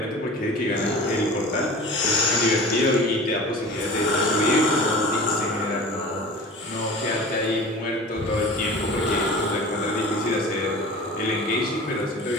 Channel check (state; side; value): normal; both; correlation 0.38